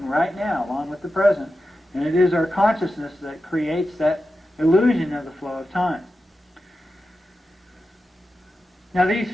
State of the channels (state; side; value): normal; both; correlation 0.91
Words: right now, along with the present, and it is our consciousness that creates that illusion of the flow of time. Now, these